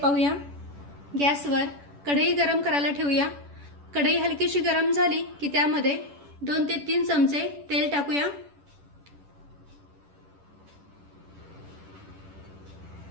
गॅसवर कढई गरम करायला ठेवूया। कढई हलकीशी गरम झाली की त्यामध्ये 2 ते 3 चमचे तेल टाकूया।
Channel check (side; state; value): left; late; 10 ms